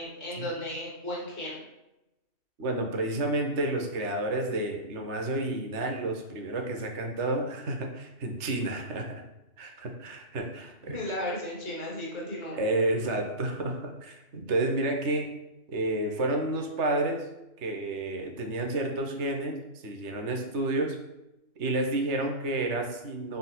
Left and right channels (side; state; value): left; late; 3.2 ms